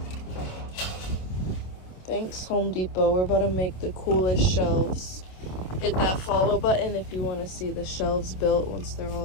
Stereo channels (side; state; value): right; late; 27 ms